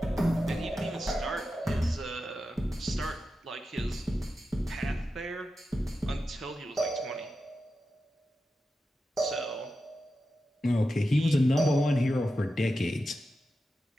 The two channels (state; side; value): normal; both; correlation 0.91